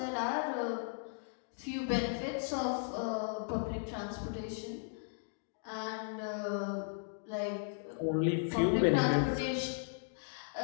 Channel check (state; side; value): silent; right; digital silence